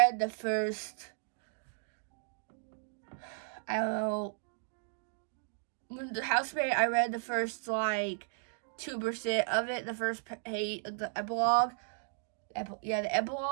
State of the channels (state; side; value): silent; left; digital silence